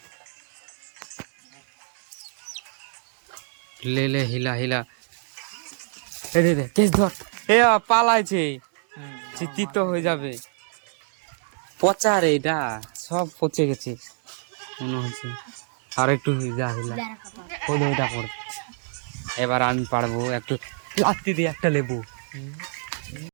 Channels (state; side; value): silent; left; 61 dB below the other